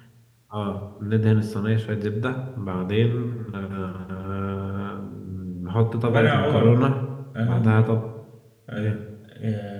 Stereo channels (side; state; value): both; identical; correlation 1.00